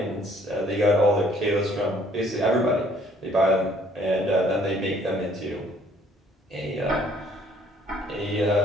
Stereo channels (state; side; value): normal; both; correlation 0.61